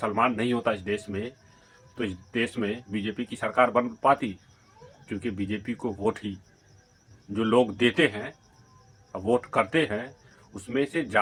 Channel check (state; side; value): identical; both; correlation 1.00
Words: नहीं होता इस देश में तो इस देश में बीजेपी की सरकार बन पाती? क्योंकि बीजेपी को वोट ही जो लोग देते हैं, वोट करते हैं, उसमें से